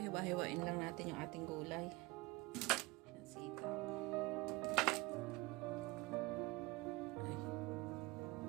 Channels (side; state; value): left; quieter; 23.1 dB